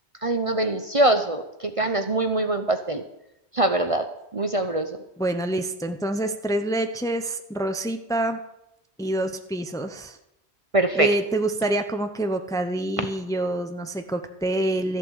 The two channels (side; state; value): both; normal; correlation 0.34